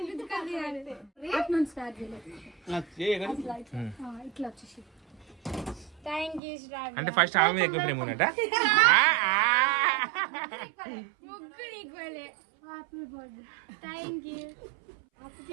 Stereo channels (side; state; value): left; drops out; at 6.4 s